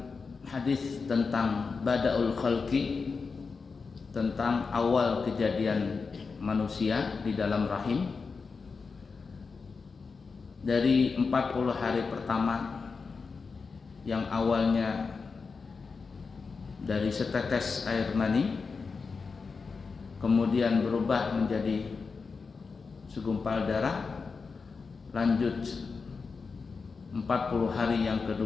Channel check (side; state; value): right; quieter; 4.8 dB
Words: hadis tentang bada'ul khalqi, tentang awal kejadian manusia di dalam rahim, dari 40 hari pertama yang awalnya dari setetes air mani, kemudian berubah menjadi segumpal darah, lanjut 40 hari yang